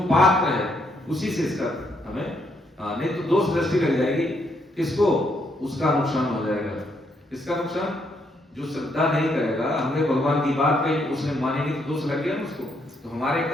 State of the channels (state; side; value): normal; both; correlation 0.74